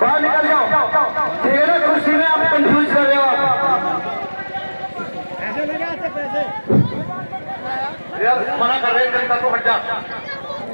बाहर निकल जाओ, ठीक है ना? कुर्सी में आप कंफ्यूज कर रहे हो आप। यार मना कर रहे हैं, जनता को हट जा,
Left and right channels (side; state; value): both; inverted; correlation -1.00